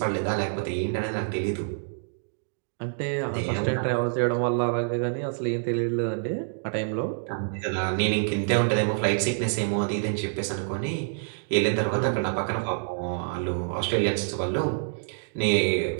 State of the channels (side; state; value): left; silent; digital silence